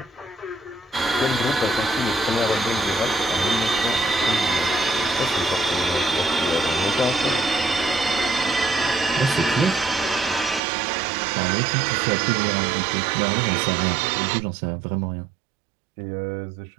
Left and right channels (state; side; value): drops out; left; at 10.6 s